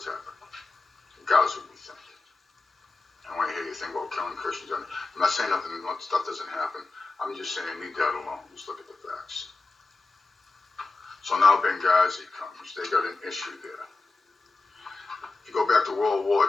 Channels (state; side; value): quieter; right; 3.6 dB